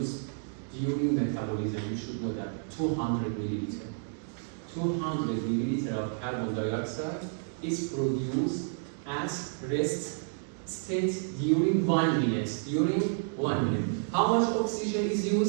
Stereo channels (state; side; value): silent; left; digital silence